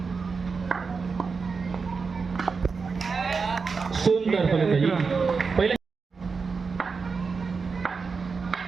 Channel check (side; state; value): left; quieter; 4.9 dB